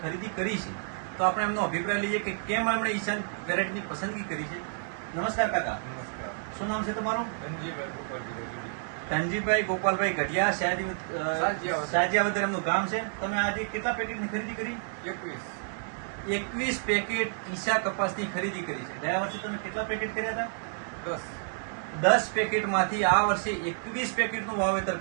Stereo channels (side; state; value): left; silent; 58 dB below the other